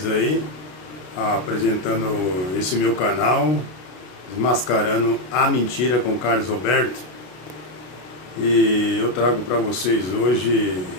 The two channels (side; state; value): right; late; 33 ms